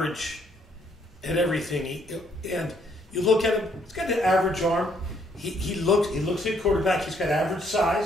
at everything. And you look at him; he's got an average arm. He looks like a quarterback. He's got average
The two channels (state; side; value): normal; both; correlation 0.68